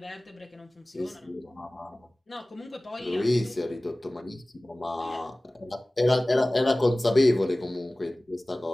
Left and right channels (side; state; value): both; normal; correlation 0.98